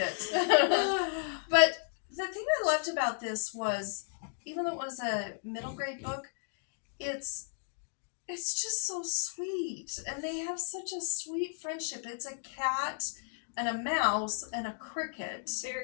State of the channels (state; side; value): silent; right; digital silence